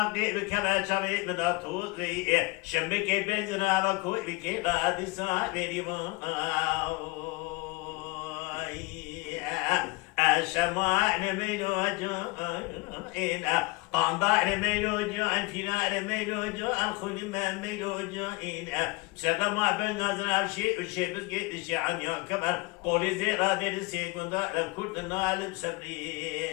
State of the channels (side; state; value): right; quieter; 24.4 dB